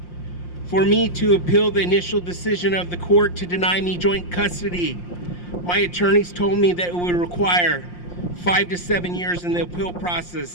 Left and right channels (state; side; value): late; right; 5.7 ms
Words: For me to appeal the initial decision of the court to deny me joint custody, my attorneys told me that it would require 5 to 7 years in the appeal